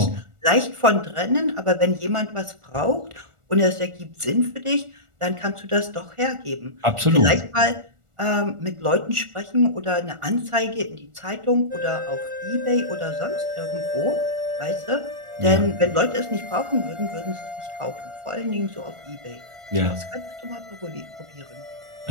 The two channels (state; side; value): late; left; 1.4 ms